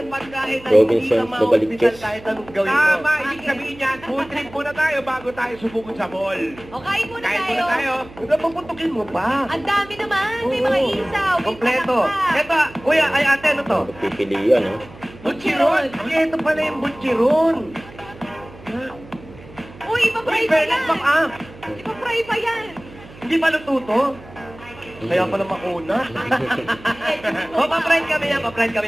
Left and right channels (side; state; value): right; noise; hum, 20 dB below the sound